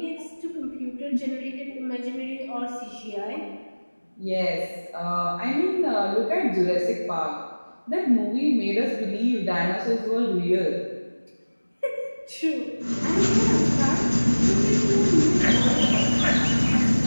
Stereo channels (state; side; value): inverted; both; correlation -1.00